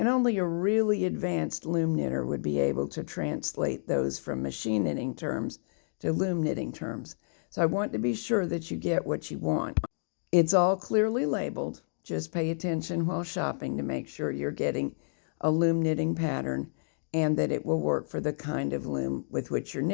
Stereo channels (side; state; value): right; silent; digital silence